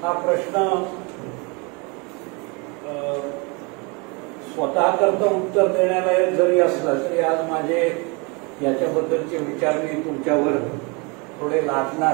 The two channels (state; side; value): quieter; left; 29.7 dB